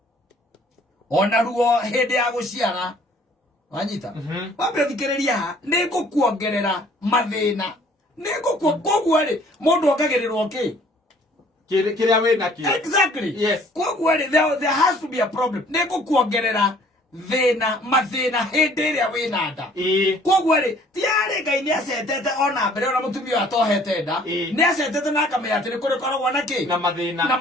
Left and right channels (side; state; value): both; normal; correlation 0.56